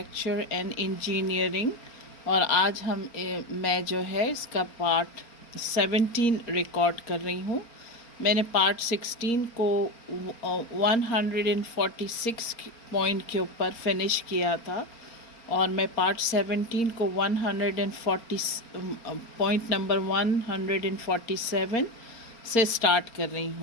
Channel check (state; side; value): late; right; 4.3 ms